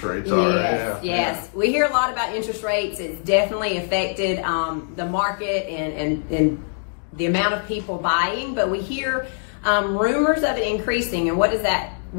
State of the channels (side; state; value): right; silent; 62 dB below the other